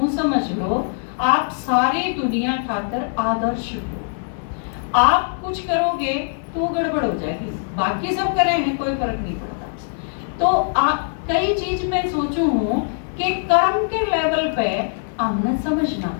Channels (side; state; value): right; silent; digital silence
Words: समझ लो, आप सारी दुनिया खातर आदर्श हो। आप कुछ करोगे तो गड़बड़ हो जाएगी, बाकी सब करे हैं कोई फर्क नहीं पड़ता। तो कई चीज मैं सोचू हूं कि कर्म के लेवल पे हमने समझना